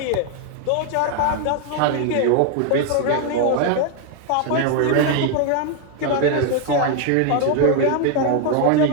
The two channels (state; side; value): different; both; correlation 0.01